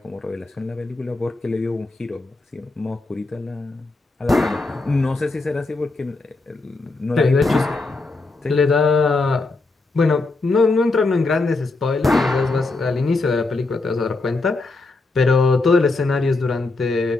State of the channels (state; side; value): quieter; right; 3.3 dB